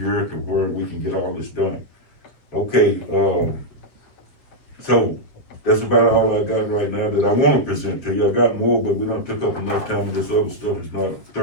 to where we can get all this done. Okay, so that's about all I got right now that I wanna present to you. I got more, but we done took up enough time, and this other stuff is not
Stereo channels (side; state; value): right; late; 7.6 ms